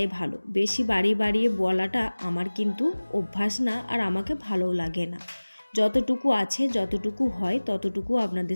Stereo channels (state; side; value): inverted; both; correlation -1.00